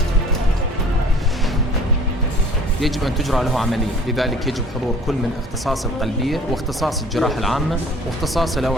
يجب أن تجرى له عملية، لذلك يجب حضور كل من اختصاص القلبية واختصاص الجراحة العامة واختصاص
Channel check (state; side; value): normal; both; correlation 0.51